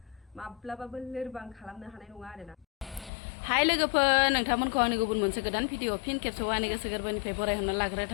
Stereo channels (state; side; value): drops out; right; at 3.1 s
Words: माब्लाबाबो लोरबां खालामनो हानाय नङा आरोना हाय लोगोफोर नोंथांमोनखौ आंनि गुबुन मोनसे गोदान भिडिअ फिन खेबसेबाव आंनि गोसो गोरबोनिफ्राय बरायहरनो लाग्रोनाय